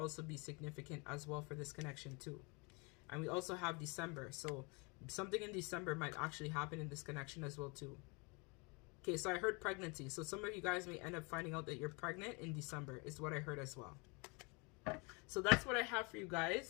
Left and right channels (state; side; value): quieter; right; 30.5 dB